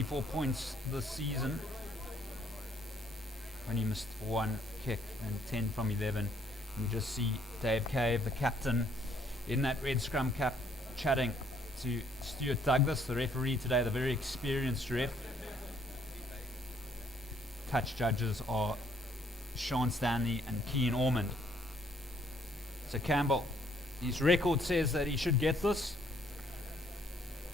points this season. Only missed 1 kick and 10 from 11. You just see Dave Cave, the captain, in that red scrum cap, chatting to Stuart Douglas, the referee today, the very experienced ref. Touch judges are Sean Stanley and Keane Ormond. So Campbell, his record says that he should get this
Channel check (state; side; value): normal; both; correlation 0.66